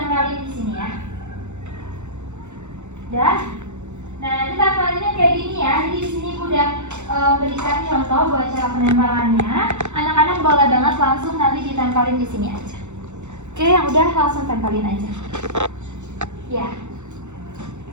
di sini ya. Udah. Nah, nanti tempelinnya kayak gini ya. Jadi di sini aku udah berikan contoh buat cara penempelannya. Anak-anak boleh banget langsung nanti ditempelin di sini aja. Oke, yang udah langsung tempelin aja. Ya.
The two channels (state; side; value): late; left; 0.83 ms